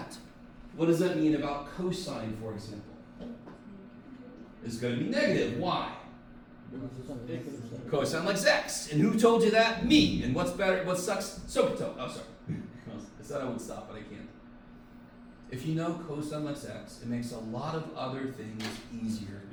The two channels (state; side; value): identical; both; correlation 1.00